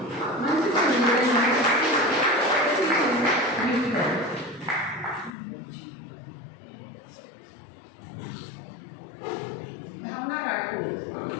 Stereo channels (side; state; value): right; drops out; at 5.3 s